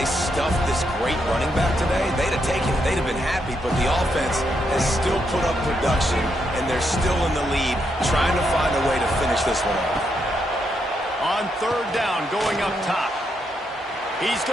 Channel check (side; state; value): both; normal; correlation 0.79